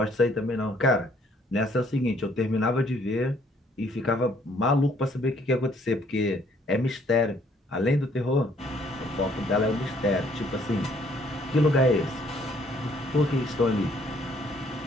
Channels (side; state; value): both; normal; correlation 0.64